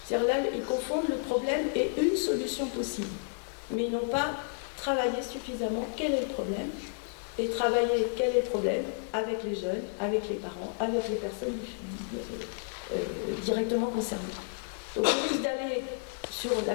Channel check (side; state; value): right; silent; 57 dB below the other